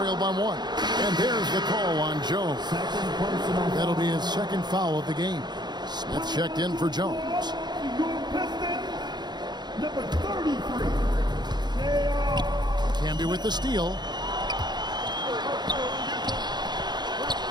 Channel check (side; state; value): left; late; 0.21 ms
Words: by 1. And there's the call on Jones. That'll be his second foul of the game. Smith checked in for Jones. Number 33. Camby with the steal.